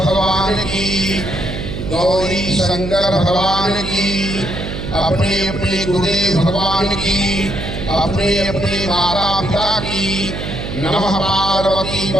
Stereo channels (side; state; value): right; noise; hum, 6 dB below the sound